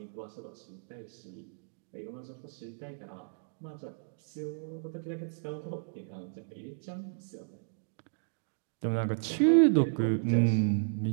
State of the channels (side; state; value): left; silent; digital silence